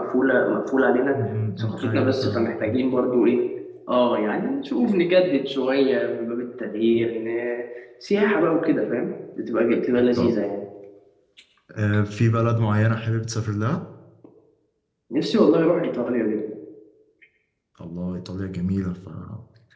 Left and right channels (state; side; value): identical; both; correlation 1.00